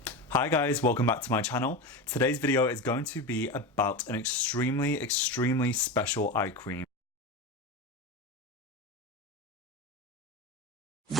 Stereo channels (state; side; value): normal; both; correlation 0.23